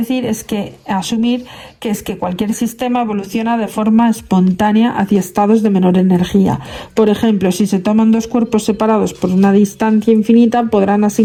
es que asumir que es que cualquier sistema evoluciona de forma espontánea hacia estados de menor energía. Por ejemplo, si se toman dos cuerpos separados por una distancia infinita, podrán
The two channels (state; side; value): identical; both; correlation 1.00